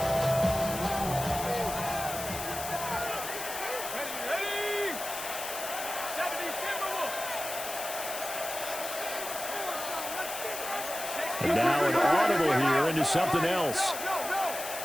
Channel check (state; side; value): noise; left; hiss, 7 dB below the sound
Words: And now an audible here into something else.